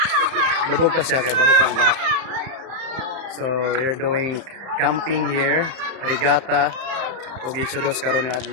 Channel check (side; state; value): left; late; 31 ms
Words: lubog pa siya kay bago pa ang baha. So we're doing camping here, regatta ug Exodus karon nga